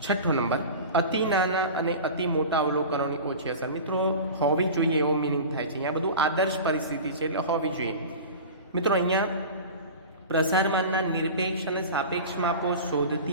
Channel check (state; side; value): inverted; both; correlation -0.33